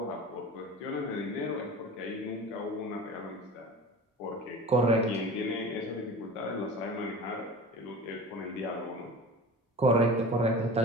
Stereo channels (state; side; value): normal; both; correlation 0.36